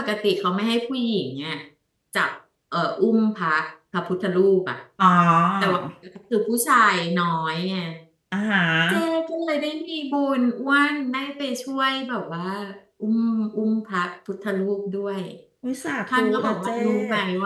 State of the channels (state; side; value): identical; both; correlation 1.00